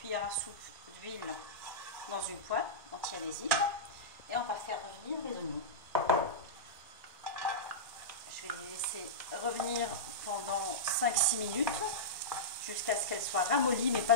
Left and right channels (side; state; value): both; normal; correlation -0.14